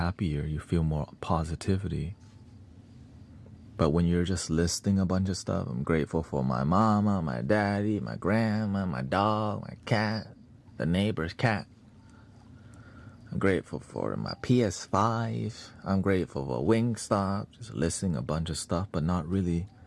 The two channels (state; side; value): identical; both; correlation 1.00